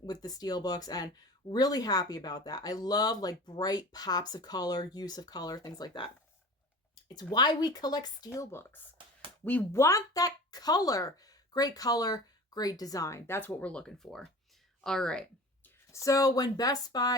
with the Steelbooks, and really happy about that. I love like bright pops of color, use of color, things like that. It's why we collect Steelbooks. We want that color. Great color, great design. That's what we're looking for. All right. So when Best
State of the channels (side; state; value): both; normal; correlation 0.38